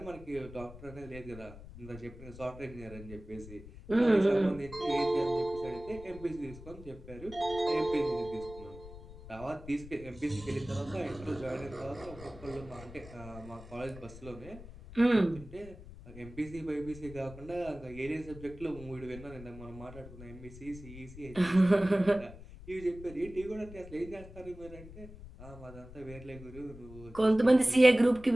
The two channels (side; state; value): left; noise; rumble, 16 dB below the sound